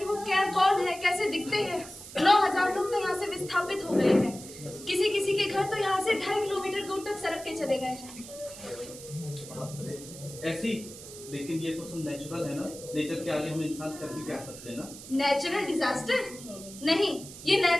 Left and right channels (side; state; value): right; noise; hiss, 14 dB below the sound